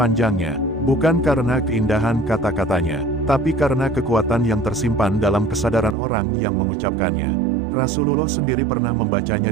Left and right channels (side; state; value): left; drops out; at 6.0 s